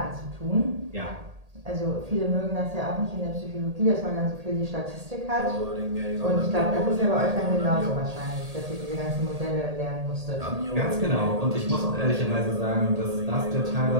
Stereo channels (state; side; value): late; left; 1.8 ms